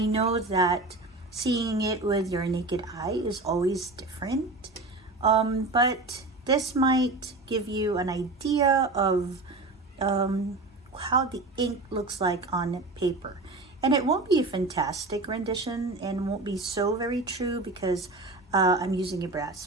know that seeing it with your naked eye is always different, but this might give you an idea of how the ink looks like on paper. And it won't be a fantastic rendition and won't be so very true because I'm using a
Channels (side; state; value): left; quieter; 3.3 dB